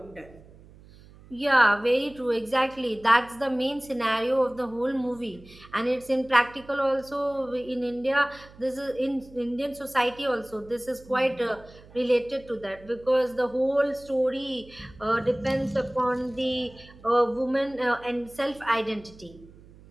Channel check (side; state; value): right; noise; hum, 22 dB below the sound